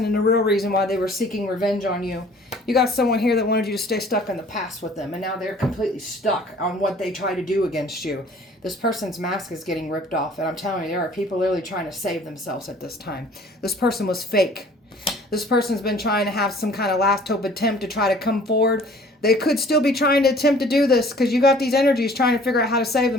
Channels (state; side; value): normal; both; correlation 0.52